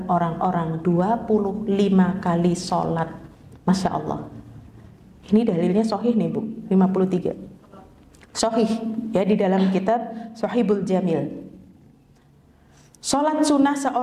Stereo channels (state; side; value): identical; both; correlation 1.00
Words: orang-orang 25 kali salat. Masya Allah. Ini dalilnya sahih nih, Bu. 53 sahih, ya, di dalam kitab Sahihul Jamil. Salat sunnah